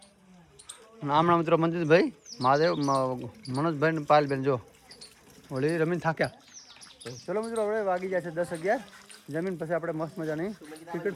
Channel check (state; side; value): identical; both; correlation 1.00